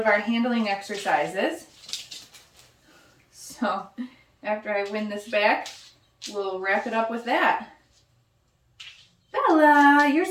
our handling exercises. So after I win this back, we'll wrap it up with that. Bella, you're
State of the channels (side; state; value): both; identical; correlation 1.00